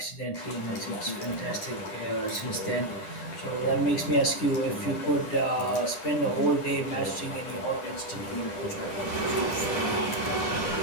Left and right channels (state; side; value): late; right; 9.9 ms